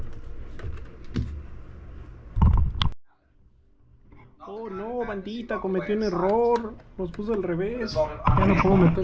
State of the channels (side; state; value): both; identical; correlation 1.00